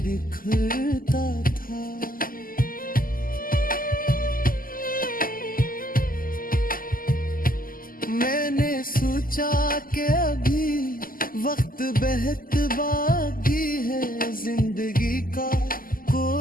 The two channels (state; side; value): late; right; 0.42 ms